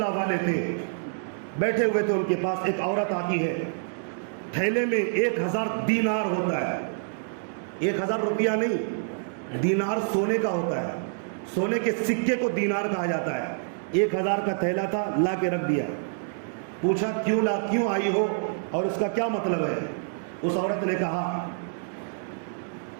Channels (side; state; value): left; silent; 60 dB below the other